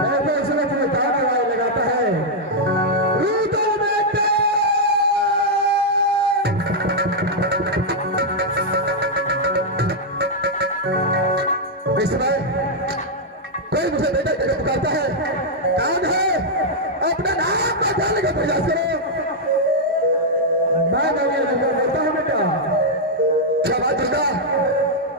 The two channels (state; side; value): normal; both; correlation -0.04